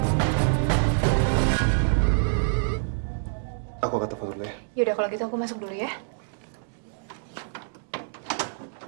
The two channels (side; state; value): left; silent; digital silence